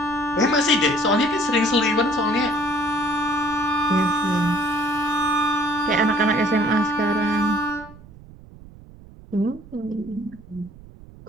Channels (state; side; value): noise; right; rumble, 20 dB below the sound